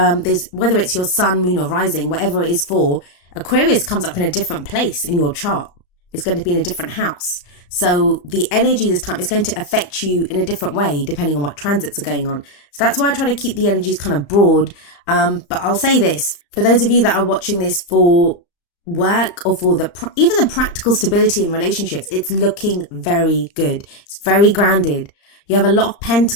it's your sun, moon or rising, whatever it is for, Aquarius comes up in a different place in your chart. It's going to be in a different house. So the energy this time is going to affect you in a different way depending on what transits are going on. So that's why I try to keep the energies kind of broad. But I'll say this, for those of you that are watching this for work or for even the practical stability in relationships, it's looking very good. It's very grounded. You have a lot of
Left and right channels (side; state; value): right; late; 35 ms